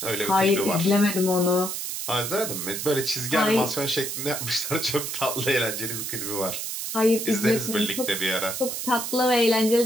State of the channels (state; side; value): noise; right; hiss, 4 dB below the sound